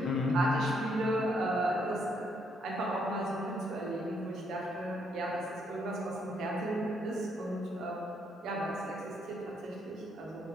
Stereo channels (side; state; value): both; normal; correlation 0.73